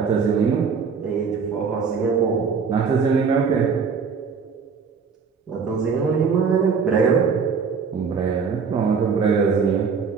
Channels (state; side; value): quieter; left; 5.7 dB